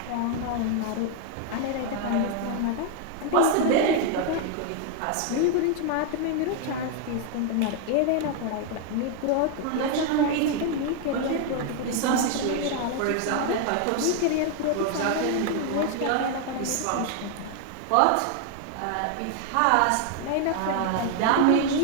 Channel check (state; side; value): different; both; correlation 0.00